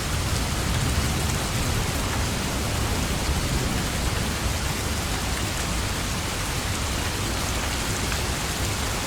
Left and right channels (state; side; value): identical; both; correlation 1.00